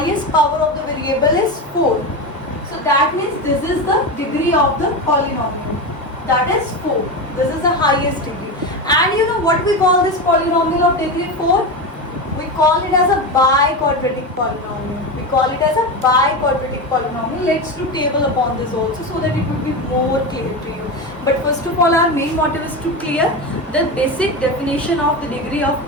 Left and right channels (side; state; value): both; normal; correlation 0.19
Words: power of the variable is 4. So that means this is the degree of the polynomial. That is 4. This is the highest degree. And you know what we call this polynomial of degree 4? We call it as a biquadratic polynomial. We call it as a biquadratic polynomial. Let's do table upon this also so that it will be more clear to you. But first of all, our main motive is to clear the basic definition of the degree of